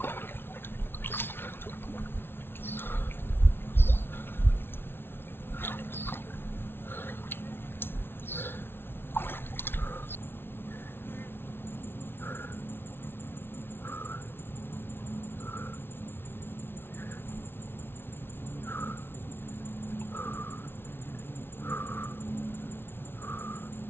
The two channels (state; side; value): late; right; 0.11 ms